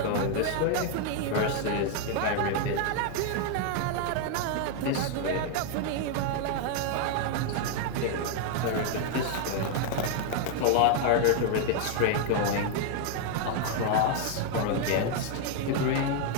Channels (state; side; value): different; both; correlation 0.00